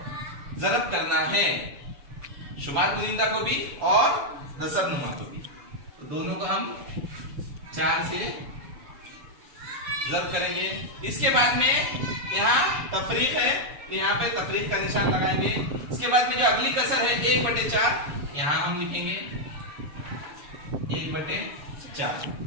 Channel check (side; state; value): left; late; 6.9 ms